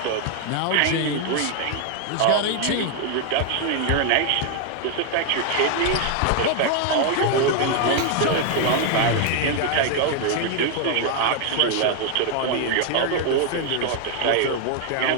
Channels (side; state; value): both; different; correlation 0.00